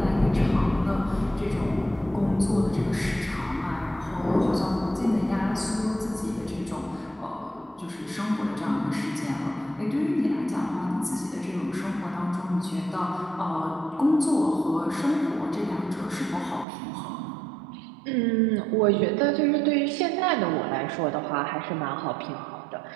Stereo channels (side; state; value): left; drops out; at 16.7 s